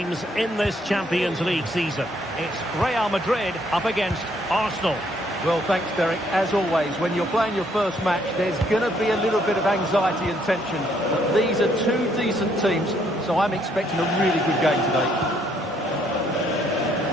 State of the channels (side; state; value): both; normal; correlation 0.68